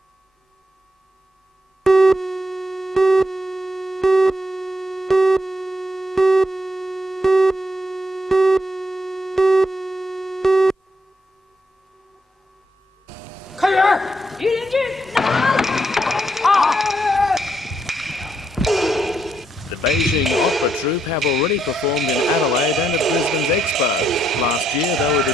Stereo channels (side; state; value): both; normal; correlation 0.78